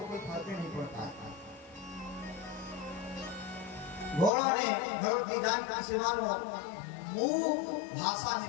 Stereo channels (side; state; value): right; drops out; at 4.3 s